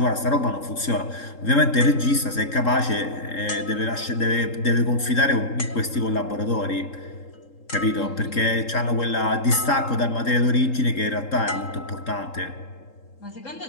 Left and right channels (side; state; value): right; late; 3.7 ms